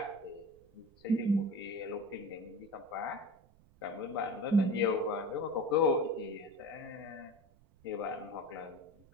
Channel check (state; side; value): noise; right; rumble, 28 dB below the sound